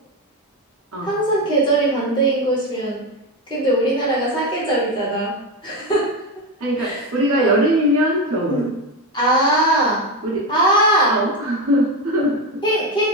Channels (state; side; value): normal; both; correlation 0.14